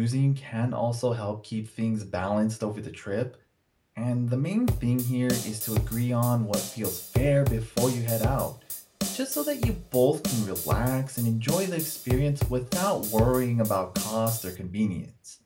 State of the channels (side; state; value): both; identical; correlation 1.00